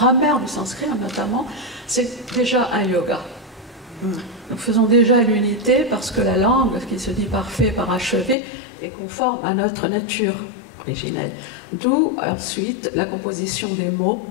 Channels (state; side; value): drops out; right; at 8.3 s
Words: du sanskrit notamment, c'est déjà un yoga. Nous faisons déjà l'unité parce que la langue, qui se dit parfait, parachevé, est conforme à notre nature originelle. D'où ensuite la composition des mots,